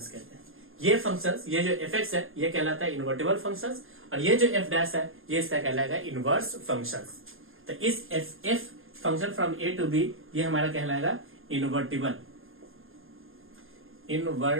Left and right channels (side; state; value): left; late; 0.60 ms